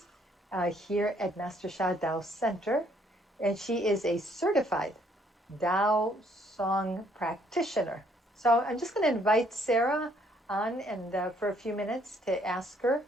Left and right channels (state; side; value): normal; both; correlation 0.66